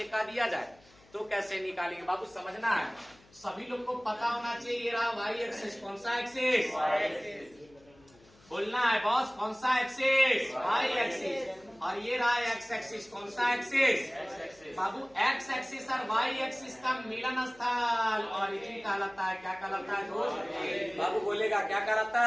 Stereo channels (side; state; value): left; noise; hum, 28 dB below the sound